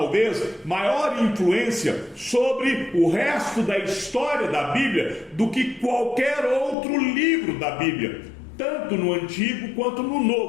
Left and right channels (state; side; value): drops out; right; at 6.8 s